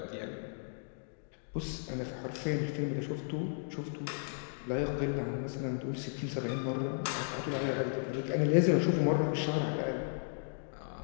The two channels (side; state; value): right; silent; digital silence